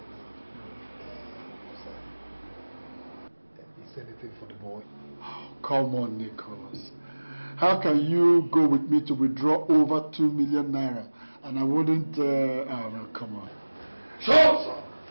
Is there anything for the boy? Oh, come on, Nicholas. How can you go with me to withdraw over 2 million naira and I wouldn't... oh, no, come on. Shut up, sir!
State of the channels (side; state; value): both; inverted; correlation -1.00